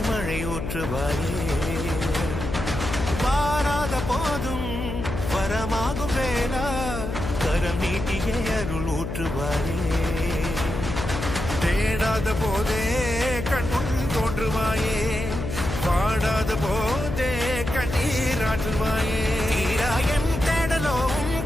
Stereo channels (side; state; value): left; noise; hum, 5 dB below the sound